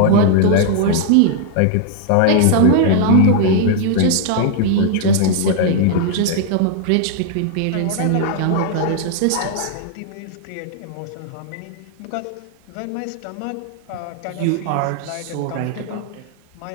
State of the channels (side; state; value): both; different; correlation 0.00